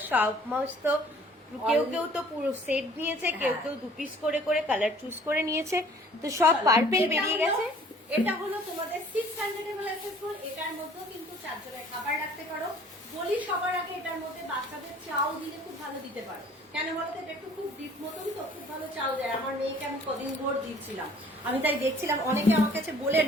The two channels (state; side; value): normal; both; correlation 0.53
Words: সমস্ত। কেউ কেউ তো পুরো সেট নিয়েছে, কেউ কেউ 2 পিস করে করে কালার চুজ করে নিয়েছে, তো সব পার্পেল বেরিয়ে গেছে। এটা হলো তোমাদের 600 ml অ্যাসেসবল, এটার মধ্যেও কিন্তু 4 জনের খাবার রাখতে পারো। বলি সবার আগে, এটার মধ্যে বাচ্চাদের চাও দিলে খুব ভালো দিতে পারো। কেন বলতো, এটা একটু খুব ডিপ মতন তো, খুব ভালো চাও দেয়। আমার মেয়েকে আমি কদিন ভোর দিচ্ছিলাম, আমি তাই দেখছিলাম, অনেকে আমার কাছে বলে